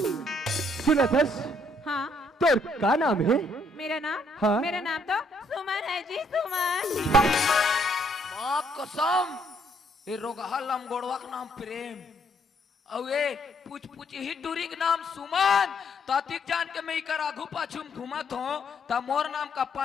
सुनत हस हाँ? तोर का नाम है? मेरा नाम? हाँ? मेरा नाम तो सुमन है जी, सुमन। माँ कसम ये रोगहा लमगोड़वा का नाम प्रेम और ये पूछ पूछ ही टूरी के नाम सुमन। तातिक जान के मैं इकर आगू पाछू में घूमत हूँ ता मोर नाम का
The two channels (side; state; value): both; normal; correlation 0.69